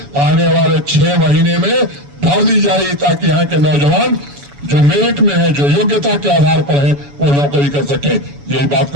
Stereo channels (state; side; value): late; left; 7.0 ms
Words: आने वाले 6 महीने में भर दी जाएगी, ताकि यहाँ के नौजवान जो मेरिट में है, जो योग्यता के आधार पर है, वो नौकरी कर सके। यही बात